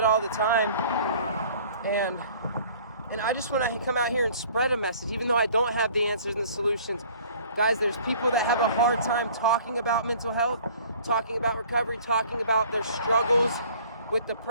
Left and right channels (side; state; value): both; inverted; correlation -0.51